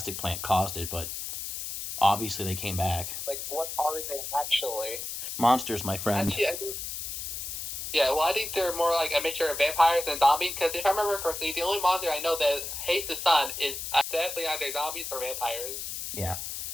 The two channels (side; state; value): left; noise; hiss, 6 dB below the sound